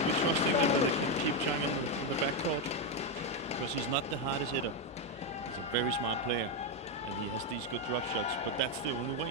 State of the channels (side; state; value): both; normal; correlation 0.06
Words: be trusting that they can keep Zhang in the backcourt, because he's not the hardest hitter. He's a very smart player, and he has these good drop shots, but that's the only